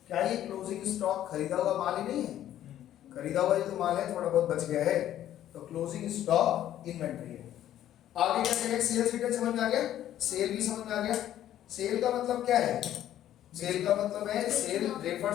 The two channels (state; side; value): quieter; right; 12.0 dB